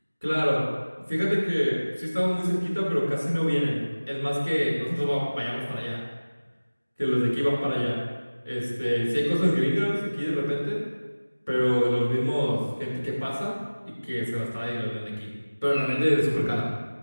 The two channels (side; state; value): both; inverted; correlation -1.00